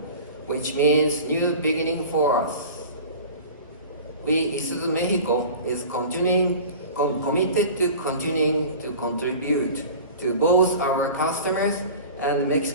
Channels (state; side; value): inverted; both; correlation -0.38